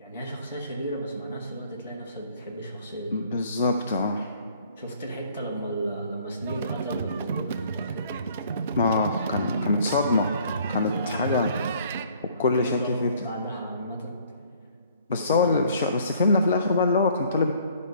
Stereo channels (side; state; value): both; inverted; correlation -0.58